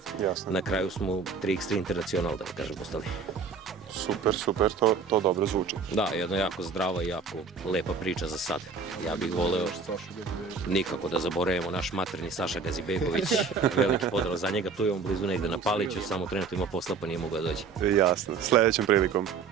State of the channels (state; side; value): quieter; left; 5.1 dB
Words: na kraju smo 3x3 Internacional, da kažem, ostali. Super, to dobro zvuči. Da, jedna jako zdrava i jako lepa priča za sad. Ja bih voleo nikako da zaboravimo naš materni Saša Gazibegović, veliki pozdrav za njega, tu je on blizu negde na Paliću, samo trenutno ima posla pa nije mogao da dođe. Jasno, sledećom prilikom.